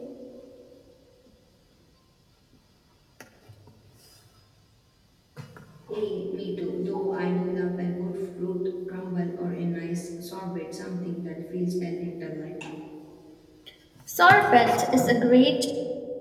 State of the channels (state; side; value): identical; both; correlation 1.00